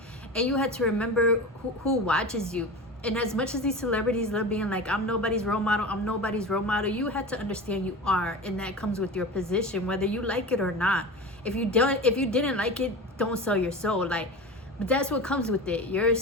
and you had to remember who watches you. And as much as these celebrities love being like, I'm nobody's role model, you had to understand you are, and that comes with your position, whether you like it or not. If you didn't like it, don't sell your soul. Like, but that's what comes with it. You're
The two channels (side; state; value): both; normal; correlation 0.30